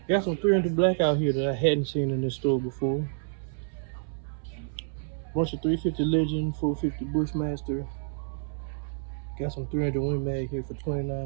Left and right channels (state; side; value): silent; left; 59 dB below the other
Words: Got some 300 black out here that I hadn't seen in this store before. Bunch of 350 Legend, 450 Bushmaster. Got some 300 Win Mag here for